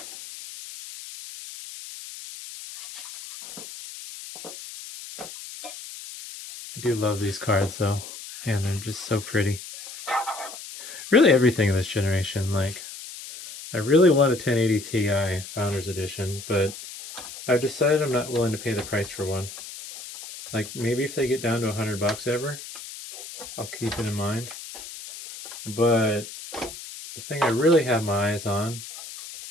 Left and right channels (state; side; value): noise; left; hiss, 12 dB below the sound